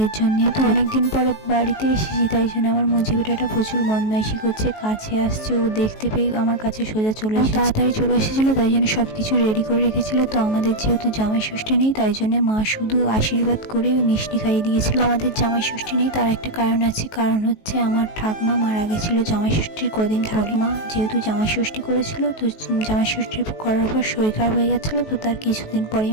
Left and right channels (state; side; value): late; right; 19 ms